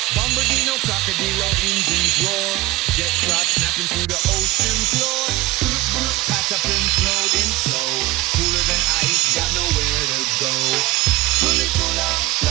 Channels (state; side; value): quieter; left; 18.3 dB